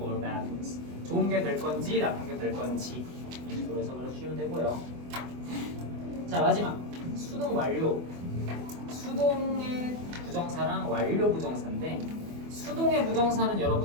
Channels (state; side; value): late; left; 24 ms